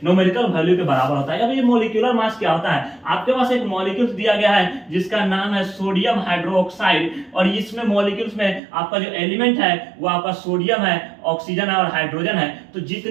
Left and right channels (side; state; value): left; drops out; at 8.6 s